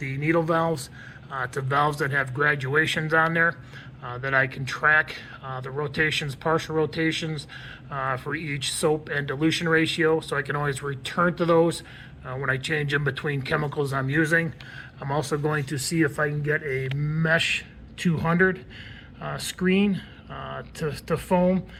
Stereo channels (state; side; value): identical; both; correlation 1.00